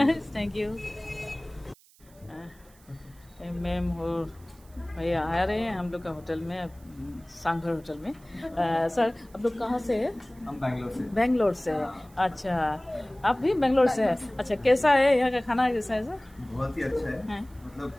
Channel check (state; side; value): noise; right; hiss, 28 dB below the sound